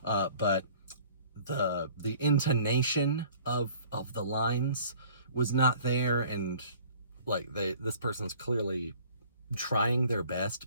But the intonation of the lines was not there, and like this person's clearly trying their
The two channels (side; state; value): both; inverted; correlation -0.52